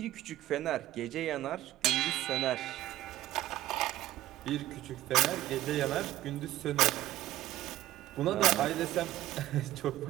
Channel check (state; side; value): quieter; left; 14.7 dB